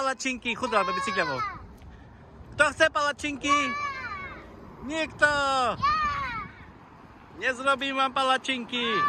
Chudá do bicykľovou. Kto chce palačinky? Nikto! Nezrobím vám palačinky.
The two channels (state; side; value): identical; both; correlation 1.00